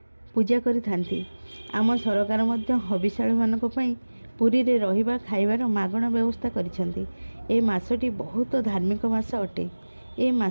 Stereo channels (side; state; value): both; inverted; correlation -1.00